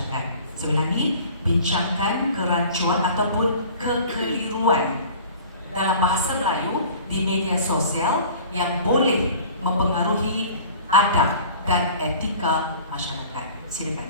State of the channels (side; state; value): both; inverted; correlation -0.45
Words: Saya ulangi, bincangkan kerancuan ataupun kekeliruan dalam bahasa Melayu di media sosial yang boleh mempengaruhi adab dan etika masyarakat.